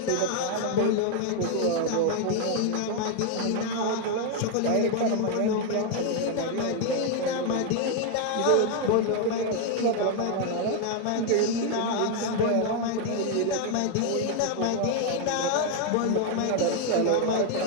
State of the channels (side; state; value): both; different; correlation 0.01